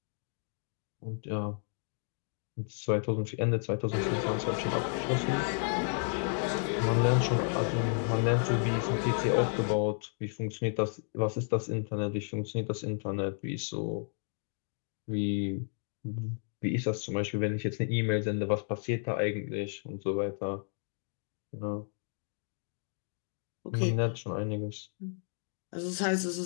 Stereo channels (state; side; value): silent; right; 56 dB below the other